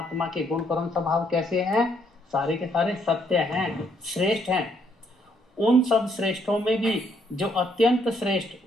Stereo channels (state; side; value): normal; both; correlation 0.71